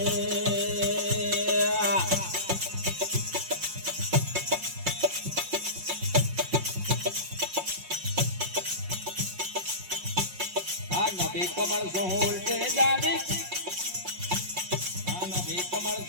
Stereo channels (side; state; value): left; late; 5.5 ms